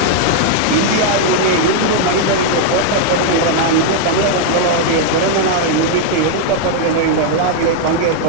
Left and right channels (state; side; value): different; both; correlation 0.00